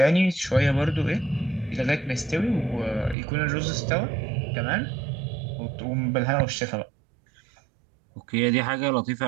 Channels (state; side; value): drops out; left; at 3.2 s